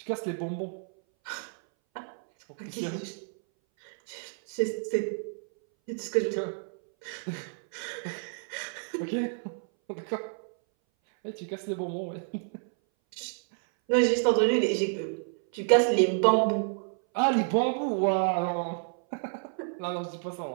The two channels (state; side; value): silent; left; 58 dB below the other